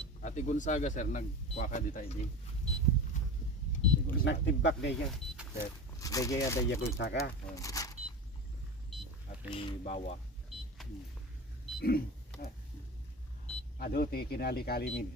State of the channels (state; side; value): normal; both; correlation 0.29